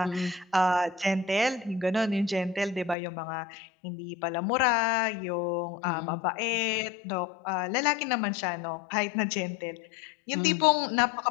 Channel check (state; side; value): drops out; right; at 3.0 s